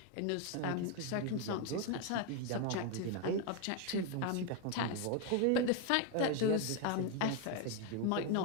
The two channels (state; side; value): different; both; correlation 0.01